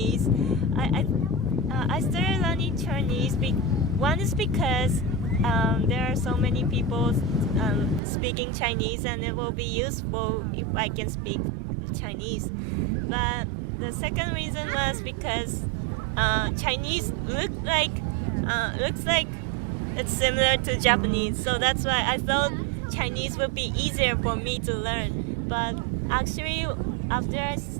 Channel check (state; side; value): drops out; left; at 8.0 s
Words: I started learning Chinese. One is because there are so many people speaking Chinese, and it will be useful if I can speak Chinese. But the second reason was because Chinese looks like it's similar to Japanese, so that's why I thought Chinese would be easier for me to learn. But actually, after I